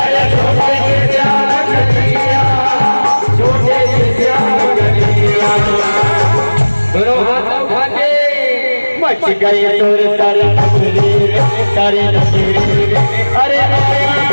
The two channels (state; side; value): inverted; both; correlation -1.00